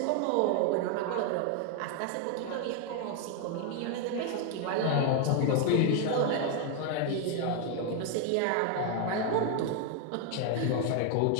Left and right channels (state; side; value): different; both; correlation 0.01